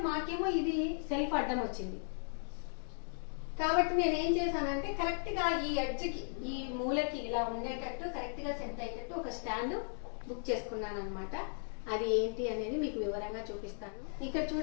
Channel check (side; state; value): right; silent; 53 dB below the other